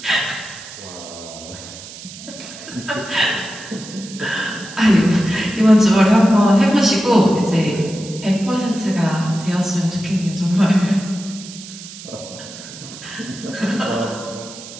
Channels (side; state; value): right; noise; hiss, 15 dB below the sound